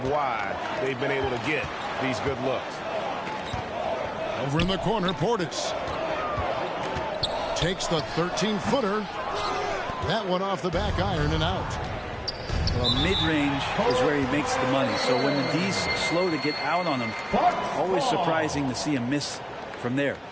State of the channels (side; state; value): both; identical; correlation 1.00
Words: why they've been able to get these good looks. Over in the corner, Portis. Takes the 13-footer. That one off the back iron and out. Well, mid-range is where he makes the money. So when the D's slow to get out on him, always surprising to see him miss from there.